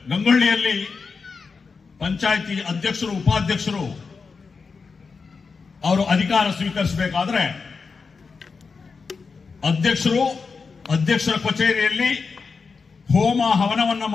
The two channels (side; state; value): right; quieter; 4.9 dB